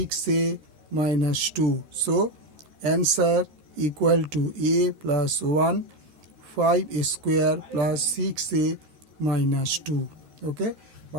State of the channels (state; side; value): late; left; 14 ms